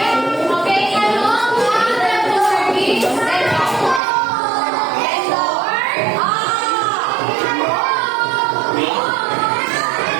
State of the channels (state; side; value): drops out; left; at 4.0 s